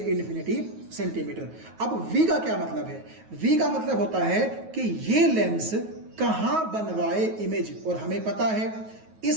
इन्फिनिटी सेंटीमीटर। अब v का क्या मतलब है, v का मतलब होता है कि ये लेंस कहां बनवाए इमेज, और हमें पता है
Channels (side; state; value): left; late; 9.3 ms